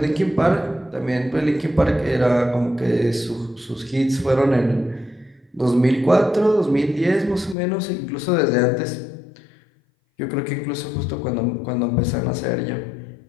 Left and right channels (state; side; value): drops out; right; at 7.6 s